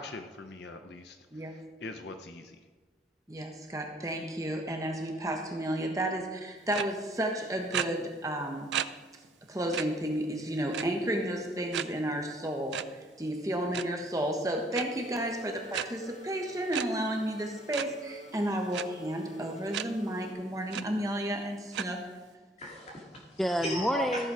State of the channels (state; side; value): normal; both; correlation 0.60